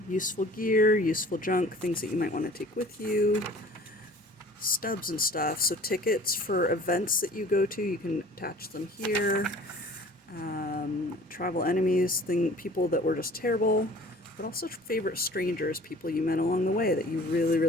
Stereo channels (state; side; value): normal; both; correlation 0.48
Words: Useful gear, useful junk, things that you might want to take with you. Stubs and stuff, so tickets for events that you go to, you can attach them here. Travel enemies, people that were just terrible, but also favorite strangers, people you met along the way that you